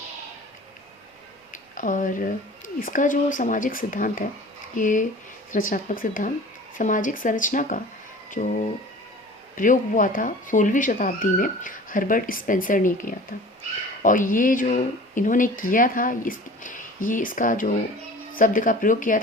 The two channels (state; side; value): normal; both; correlation 0.42